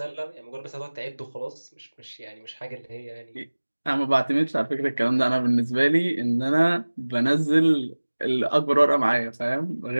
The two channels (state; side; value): inverted; both; correlation -1.00